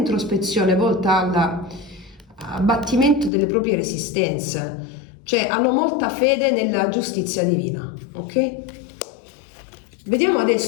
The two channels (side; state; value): right; drops out; at 3.3 s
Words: volta all'abbattimento delle proprie resistenze, cioè hanno molta fede nella giustizia divina. Ok? Vediamo